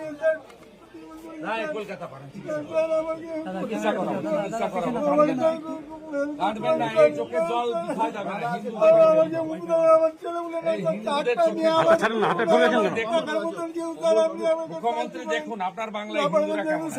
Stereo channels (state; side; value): identical; both; correlation 1.00